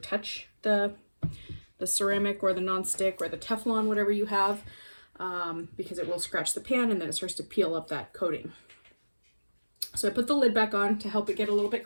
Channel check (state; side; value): inverted; both; correlation -1.00